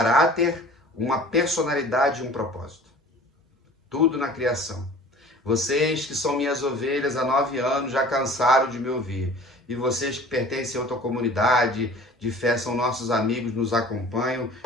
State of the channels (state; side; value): normal; both; correlation 0.45